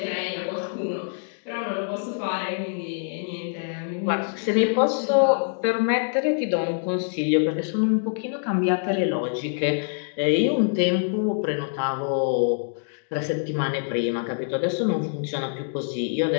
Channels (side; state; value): right; silent; digital silence